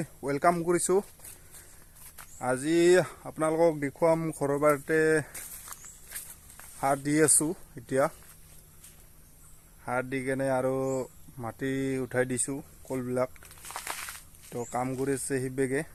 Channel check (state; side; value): identical; both; correlation 1.00